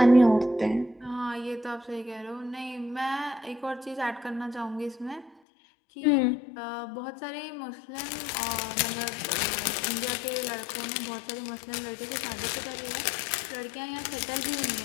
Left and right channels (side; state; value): right; drops out; at 5.3 s